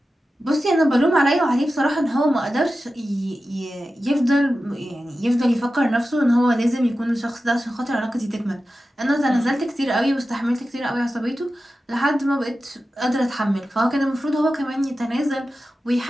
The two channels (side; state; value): both; normal; correlation 0.93